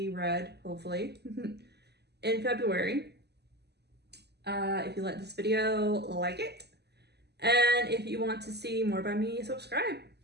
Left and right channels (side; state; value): left; late; 0.49 ms